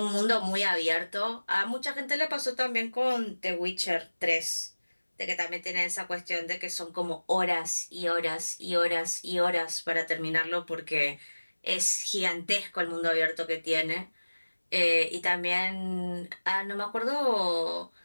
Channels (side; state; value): both; inverted; correlation -1.00